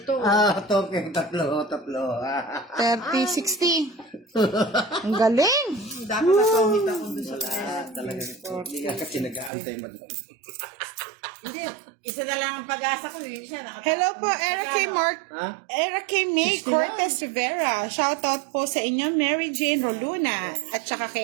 Token. 3. 30-60. Ang galing. Dapat nasumit ako dun sa tres. Talaga. Hindi ka kasi nag-aantay madam. Hindi, isa na lang ang pag-asa ko. Yung isa nakatapon. Hello po, Ha? Eric May 60 Cortez Rivera. Shoutout po sa inyo, Mary Jane Roluna. At saka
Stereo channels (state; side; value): drops out; left; at 9.5 s